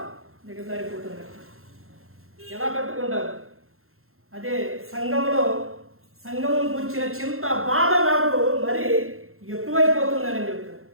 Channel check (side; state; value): left; late; 0.62 ms